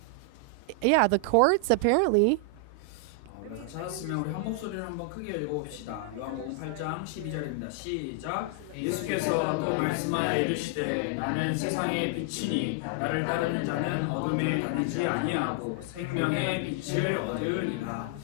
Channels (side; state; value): both; different; correlation 0.00